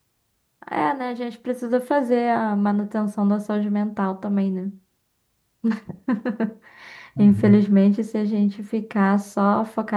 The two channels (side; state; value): both; identical; correlation 1.00